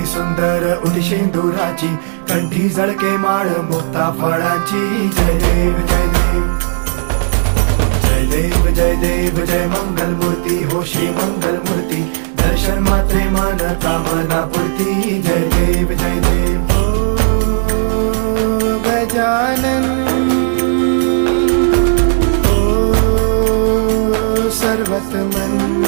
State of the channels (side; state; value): left; silent; digital silence